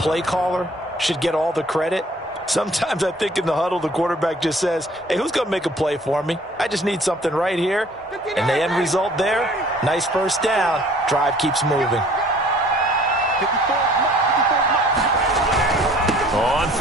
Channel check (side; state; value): both; normal; correlation 0.54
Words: caller should get all the credit. Sometimes I think in the huddle, the quarterback just says, hey, who's going to make a play for me? I just need something right here. And the end result there, nice first down. Drive keeps moving. On